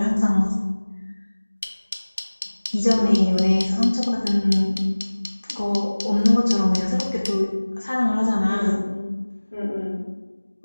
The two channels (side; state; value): both; inverted; correlation -1.00